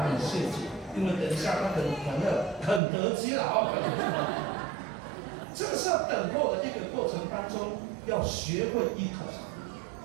谢主，因为等一下他很得机了啊。这个是要等候的一个过程当中，要学会依靠上帝。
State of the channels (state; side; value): drops out; left; at 2.8 s